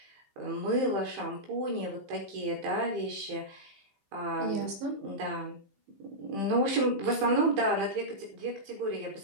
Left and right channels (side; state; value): left; late; 15 ms